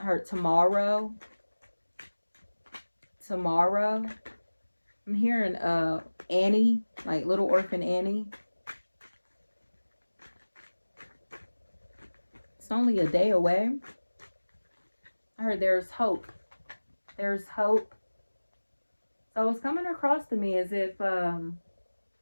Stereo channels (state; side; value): inverted; both; correlation -1.00